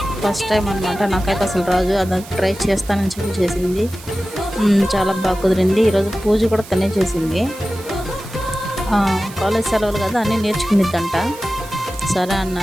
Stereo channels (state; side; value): noise; right; hiss, 18 dB below the sound